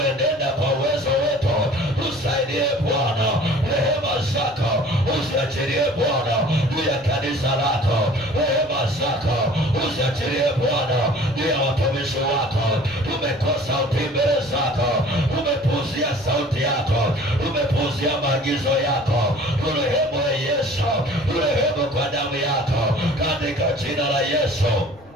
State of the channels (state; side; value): noise; left; rumble, 26 dB below the sound